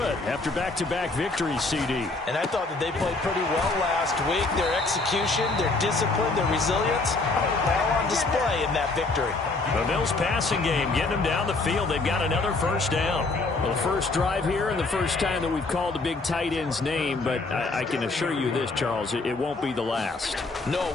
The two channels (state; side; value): quieter; right; 3.5 dB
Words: after back-to-back victories, CD. And I thought that they played pretty well last week. Their execution, their discipline, their resilience, all on display in that victory. The Bills passing game, getting them down the field. They've got another 1st down. Well, the first drive here and the first time that we've called the big tight end's name, but I can assure you this, Charles, it won't be the last. No,